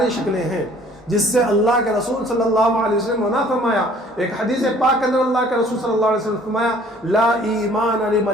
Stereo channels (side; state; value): both; normal; correlation 0.55